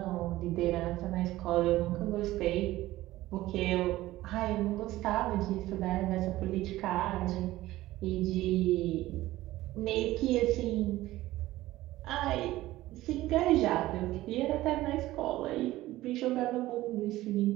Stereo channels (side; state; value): left; quieter; 16.5 dB